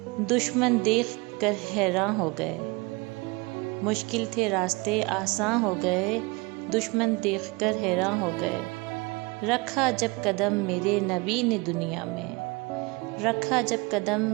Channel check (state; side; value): quieter; left; 26.1 dB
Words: دشمن دیکھ کر حیران ہو گئے۔ مشکل تھے راستے آساں ہو گئے، دشمن دیکھ کر حیران ہو گئے۔ رکھا جب قدم میرے نبی نے